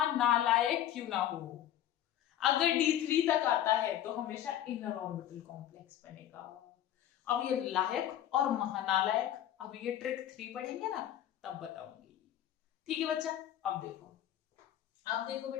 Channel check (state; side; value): quieter; right; 11.6 dB